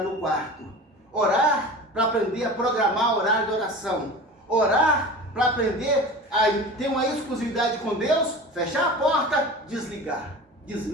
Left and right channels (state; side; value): normal; both; correlation 0.34